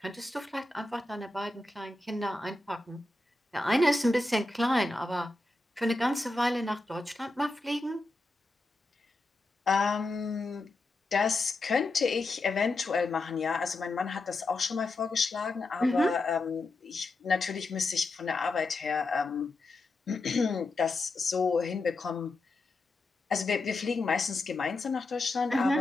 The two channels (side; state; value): right; quieter; 3.1 dB